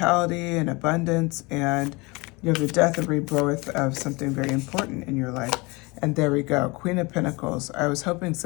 and abundance, and you have the death and rebirth of something very important in your life. And there we go, Queen of Pentacles. I was hoping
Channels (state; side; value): quieter; right; 25.9 dB